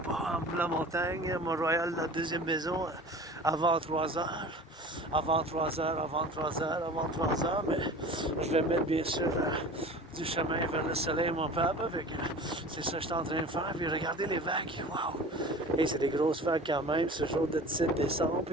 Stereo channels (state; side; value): normal; both; correlation 0.40